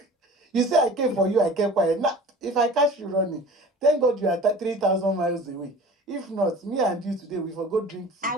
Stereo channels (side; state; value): both; normal; correlation 0.42